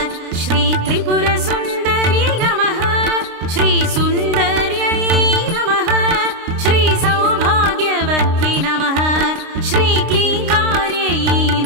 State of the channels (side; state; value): left; late; 29 ms